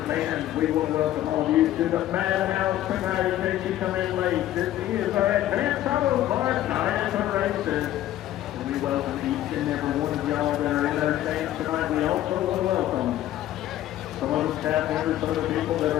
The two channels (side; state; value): right; quieter; 13.3 dB